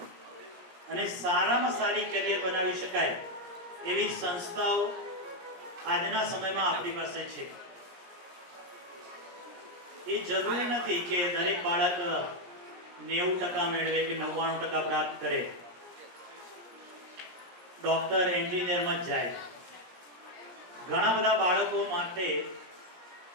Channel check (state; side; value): late; left; 17 ms